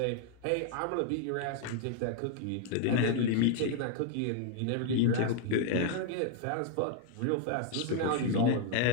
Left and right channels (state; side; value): different; both; correlation 0.00